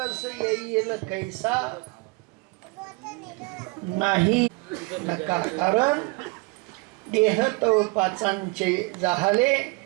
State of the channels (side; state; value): left; quieter; 27.5 dB